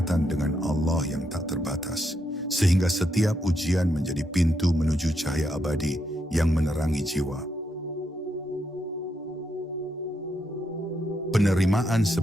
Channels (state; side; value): normal; both; correlation 0.80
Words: dengan Allah yang tak terbatas. Sehingga setiap ujian menjadi pintu menuju cahaya abadi yang menerangi jiwa. Penerimaan